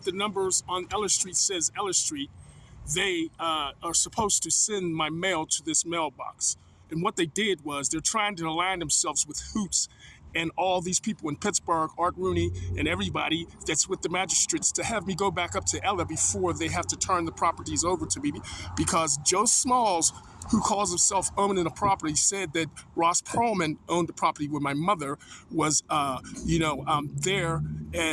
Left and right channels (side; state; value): both; identical; correlation 1.00